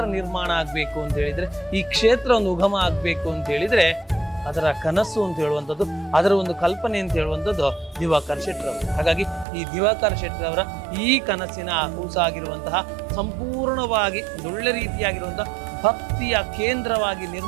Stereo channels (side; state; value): left; drops out; at 9.5 s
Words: ನಿರ್ಮಾಣ ಆಗಬೇಕು ಅಂತ ಹೇಳಿದ್ರೆ, ಈ ಕ್ಷೇತ್ರ ಒಂದು ಉಗಮ ಆಗಬೇಕು ಅಂತ ಹೇಳಿದ್ರೆ ಅದರ ಕನಸು ಅಂತ ಹೇಳುವಂಥದ್ದು, ಅದರ ಒಂದು ಕಲ್ಪನೆ ಅಂತ ಹೇಳುವಂಥದ್ದು ದಿವಾಕರ್ ಶೆಟ್ಟರವರು. ಹಾಗಾಗಿ ಈ ದಿವಾಕರ್ ಶೆಟ್ಟರವರ ಈ ಕನಸಿನ ಕೂಸಾಗಿರುವಂತಹ ಸಂಪೂರ್ಣವಾಗಿ ಒಳ್ಳೆ ರೀತಿಯಾಗಿರುವಂತಹ ಭಕ್ತಿಯ ಕೇಂದ್ರವಾಗಿ